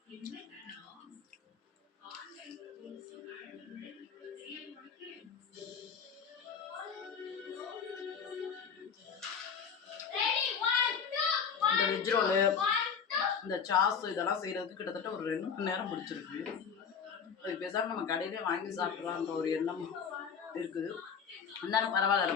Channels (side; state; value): right; quieter; 6.7 dB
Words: இந்த வெஜ் ரோலு, இந்த சாஸ் இதெல்லாம் செய்கிறதுக்கு கிட்டத்தட்ட ஒரு 2 மணி நேரம் பிடிச்சிருக்கு. அது பேசாமல் நம்ம கடையிலே வாங்கி சாப்பிடலான்ற ஒரு எண்ணம் இருக்குது. இருந்தாலும் பரவாயில்ல,